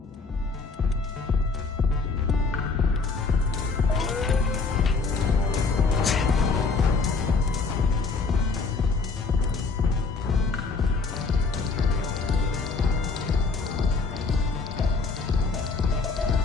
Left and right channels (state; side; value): quieter; right; 4.4 dB